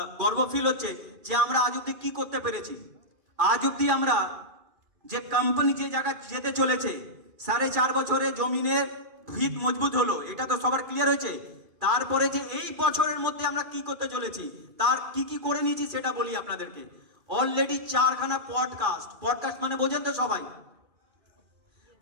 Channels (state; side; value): late; left; 2.4 ms